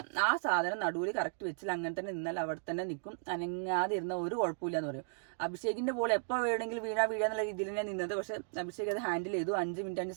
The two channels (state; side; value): silent; left; digital silence